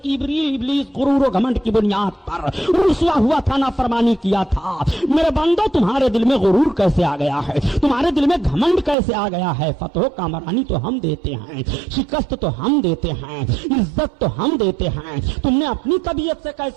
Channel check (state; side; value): drops out; left; at 9.0 s